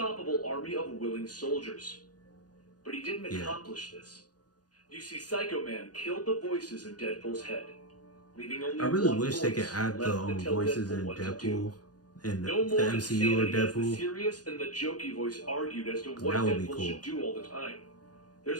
army of willing soldiers. But he didn't accomplish this. You see, Psycho Man killed the voices in Deadpool's head, leaving only I really one wish they could voice add the left to tell voices in what to Deadpool do. in No the more MCU or insanity as the Deadpool. serious and the jokey voice argued as to what That would be Deadpool cool. should do all the time.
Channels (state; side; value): late; right; 0.69 ms